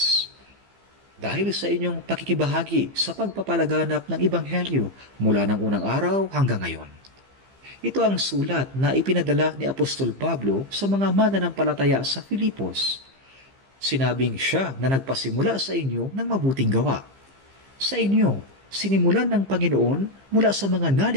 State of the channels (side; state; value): left; late; 15 ms